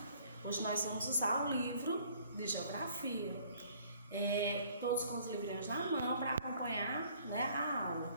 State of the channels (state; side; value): inverted; both; correlation -0.58